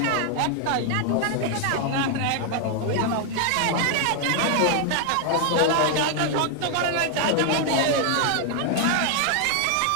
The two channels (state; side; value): different; both; correlation 0.00